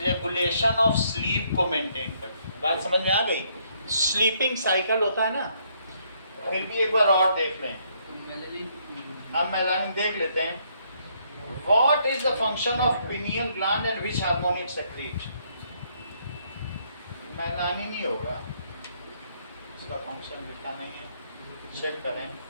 ऑफ स्लीप को मेंटेन करती है। बात समझ में आ गई? स्लीपिंग साइकिल होता है ना, फिर भी एक बार और देख लें। तो मेलानिन, हम मेलानिन देख लेते हैं। What is the function of pineal gland and which hormone it secrete? Melanin ही होगा, इसका फंक्शन लिखा नहीं है, चेक करें।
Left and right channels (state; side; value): inverted; both; correlation -0.70